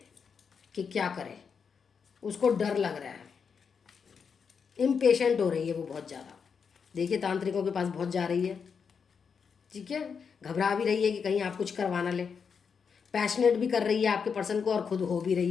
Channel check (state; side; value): quieter; right; 6.2 dB